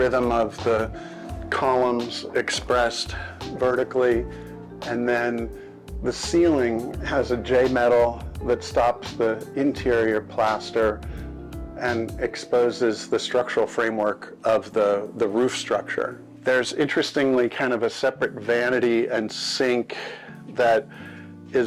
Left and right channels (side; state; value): both; identical; correlation 1.00